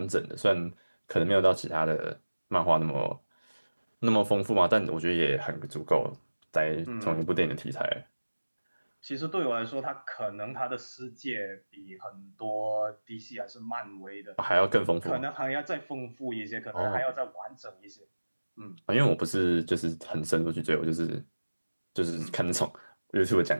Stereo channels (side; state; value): both; inverted; correlation -1.00